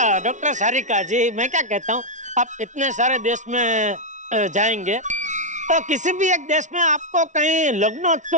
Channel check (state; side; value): late; left; 0.36 ms